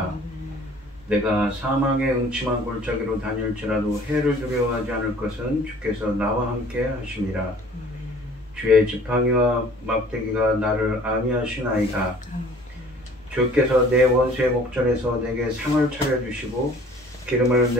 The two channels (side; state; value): both; normal; correlation 0.51